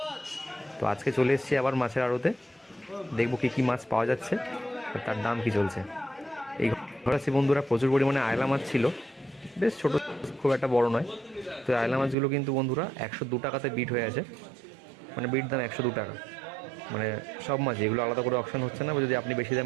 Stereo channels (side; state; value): left; drops out; at 12.2 s